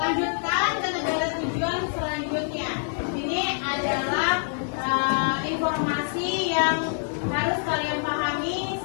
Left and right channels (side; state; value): right; silent; 61 dB below the other